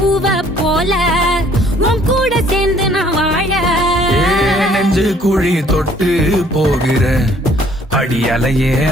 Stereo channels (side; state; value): both; normal; correlation 0.59